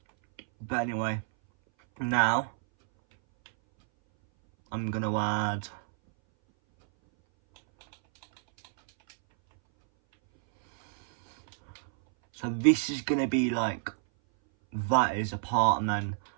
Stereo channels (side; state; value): left; silent; 59 dB below the other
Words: But anyway, now I'm gonna add so this is gonna be like, that is a part, and then